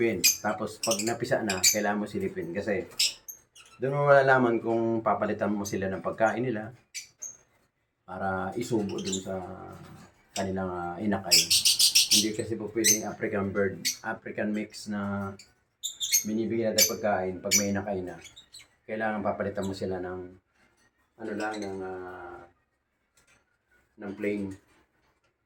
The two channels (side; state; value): both; identical; correlation 1.00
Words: Tapos pag napisa na, kailangan mo silipin. Kasi doon mo malalaman kung papalitan mo sila ng pagkain nila para isubo dun sa kanilang inakay. Hindi kasi po pwedeng African bird, African mix na binibigyan natin pagkain pag may inakay na. Kailangan papalitan mo sila ng ano lang, ng plain